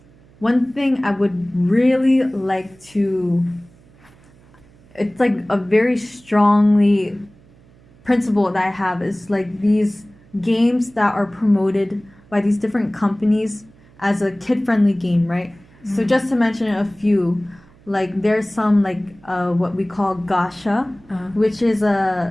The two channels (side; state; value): right; noise; hum, 28 dB below the sound